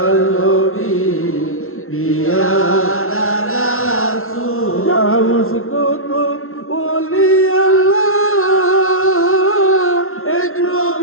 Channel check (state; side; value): late; right; 0.62 ms